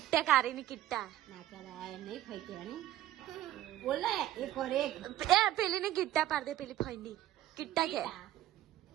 કારી ની કિટ્ટા ના કરાય નહીં ખાઈ કહેવાની બોલ ને એક और એક એ પેલી ની કિટ્ટા પાડ દે. પેલી ફંડી કિટ્ટા કે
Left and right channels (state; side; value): quieter; left; 13.3 dB